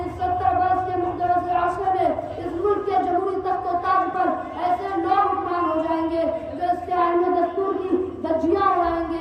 اس 70 برس کے مقدس عرصے میں اس ملک کے جمہوری تخت و تاج پر ایسے لوگ حکمران ہو جائیں گے جو اس کے آئین و دستور کی دھجیاں اڑائیں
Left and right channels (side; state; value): both; identical; correlation 1.00